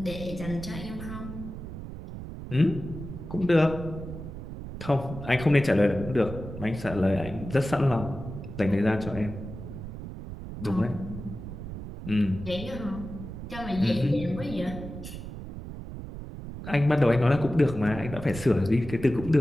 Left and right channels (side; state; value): right; noise; rumble, 10 dB below the sound